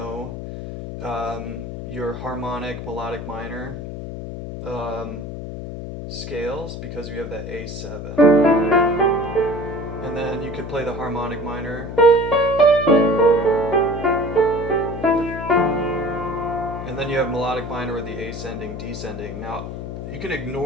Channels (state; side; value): noise; left; hum, 8 dB below the sound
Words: your harmonic, melodic minor scales because you have that A7. And then you could play the harmonic minor. And then you have melodic minor with the ascending, descending. Now, you can